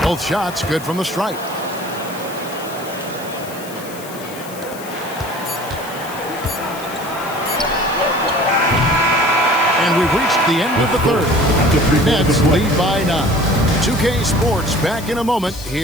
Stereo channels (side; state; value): left; noise; hiss, 16 dB below the sound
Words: Both shots good from the stripe. And we've reached the end of the third. Nets lead by 9. 2K Sports back in a moment